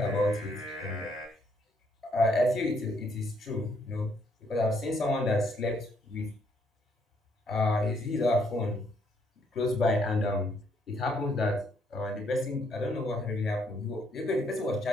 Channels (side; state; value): both; normal; correlation 0.70